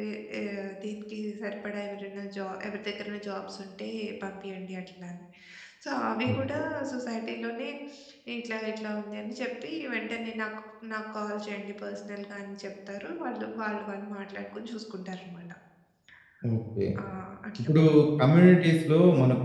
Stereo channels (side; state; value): both; identical; correlation 1.00